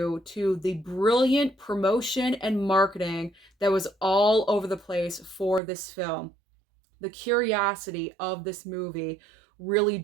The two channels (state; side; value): drops out; left; at 5.6 s